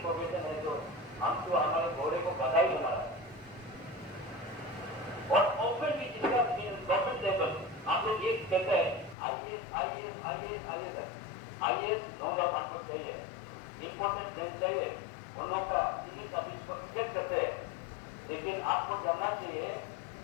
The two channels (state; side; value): drops out; right; at 9.2 s